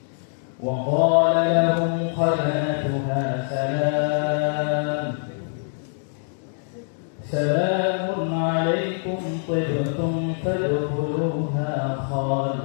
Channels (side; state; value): right; silent; digital silence